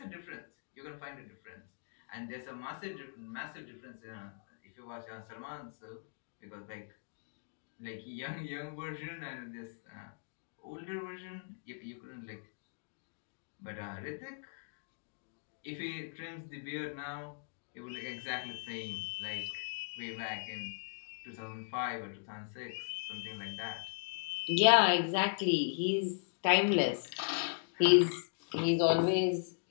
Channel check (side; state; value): right; silent; digital silence